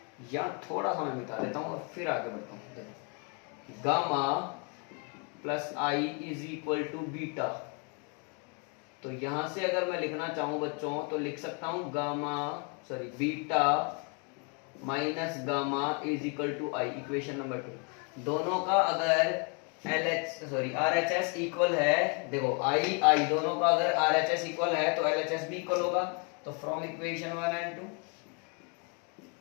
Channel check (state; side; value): quieter; right; 35.9 dB